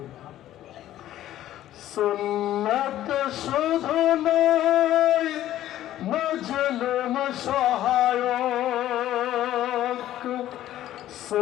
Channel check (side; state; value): right; quieter; 13.1 dB